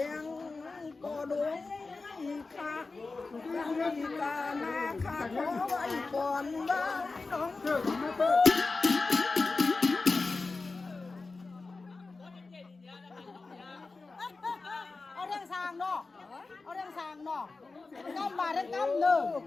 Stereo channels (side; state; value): right; quieter; 3.8 dB